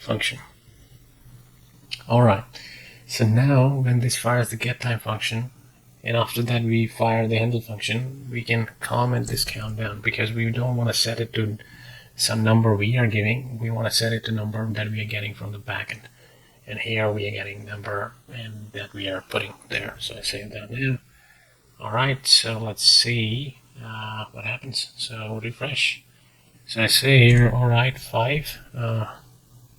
Alright, so now when this fires the get time function, and after that we fire the handle function, we can comment this countdown because we don't want to set it to some number we are giving. We want to set it to number that we are getting from the backend. And here we are getting number and that we are putting there. So I save that now. Alright, so let's see what happens. So refresh. So I say here, alright, 5,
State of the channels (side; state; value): both; identical; correlation 1.00